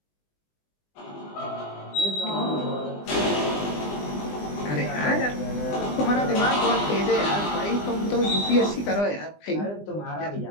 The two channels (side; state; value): right; late; 20 ms